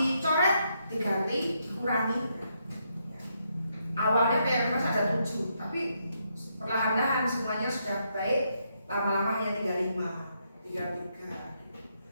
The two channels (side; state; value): both; inverted; correlation -0.78